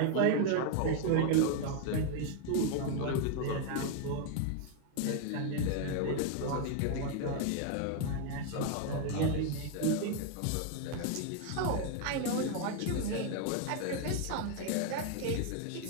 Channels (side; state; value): both; different; correlation 0.01